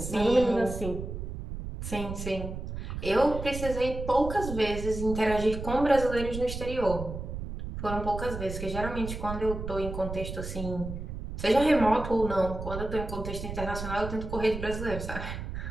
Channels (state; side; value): noise; right; rumble, 7 dB below the sound